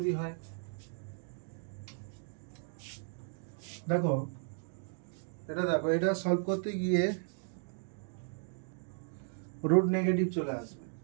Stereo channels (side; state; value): left; silent; 54 dB below the other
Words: হয়, দেখো এটা সলভ করতে গিয়ে রুট নেগেটিভ চলে আসবে,